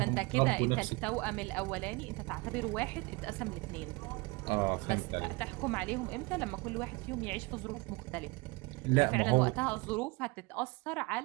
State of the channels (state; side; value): quieter; left; 26.2 dB